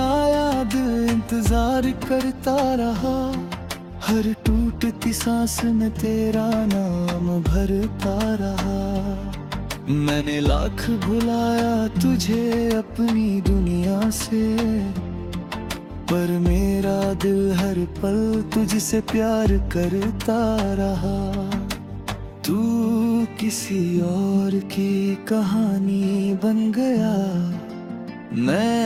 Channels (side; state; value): both; identical; correlation 1.00